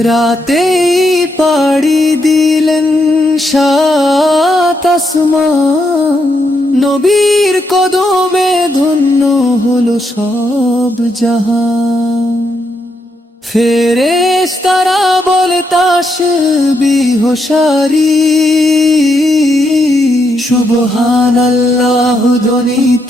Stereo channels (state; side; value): normal; both; correlation 0.79